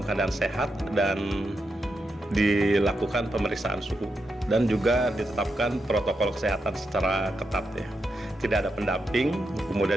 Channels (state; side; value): normal; both; correlation 0.85